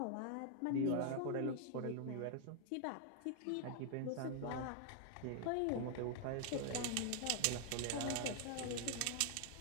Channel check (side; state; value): both; different; correlation 0.00